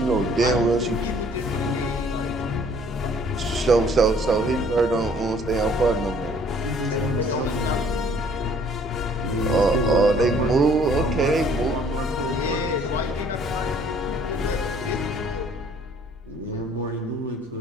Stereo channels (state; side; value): normal; both; correlation 0.58